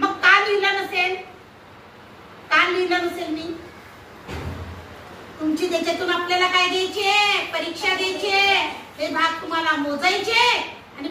का लिहिलं नसेल? का लिहिलं नसेल मी? तुमची त्याच्यातून आपल्याला काय द्यायचे? परीक्षा द्यायची. हे भाग तुम्हाला मोजायचे आणि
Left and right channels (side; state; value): both; identical; correlation 1.00